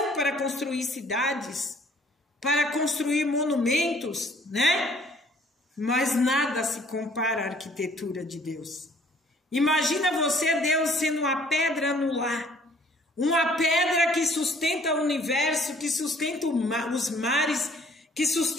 para construir cidades, para construir monumentos, né? Mas nada se compara à arquitetura de Deus. Imagina você, Deus, sendo uma pedra anular, uma pedra que sustenta o universo, que sustenta os mares, que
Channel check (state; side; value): normal; both; correlation 0.58